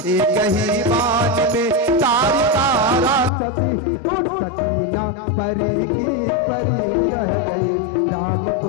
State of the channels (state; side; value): drops out; right; at 3.3 s